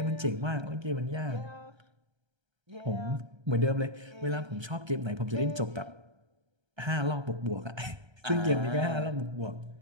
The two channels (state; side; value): late; left; 1.3 ms